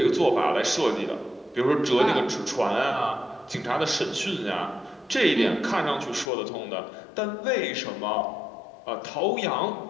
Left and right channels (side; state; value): right; drops out; at 6.3 s